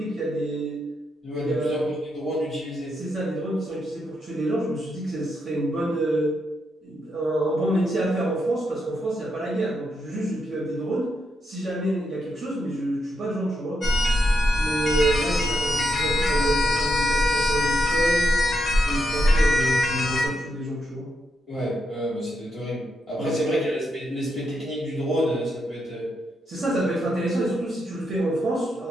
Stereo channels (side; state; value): both; normal; correlation 0.82